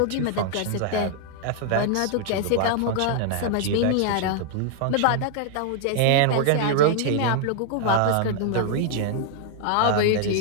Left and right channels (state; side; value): different; both; correlation 0.00